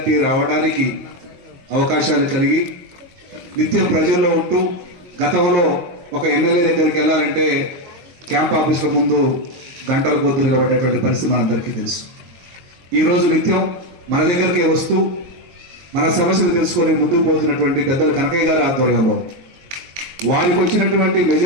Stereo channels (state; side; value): late; left; 23 ms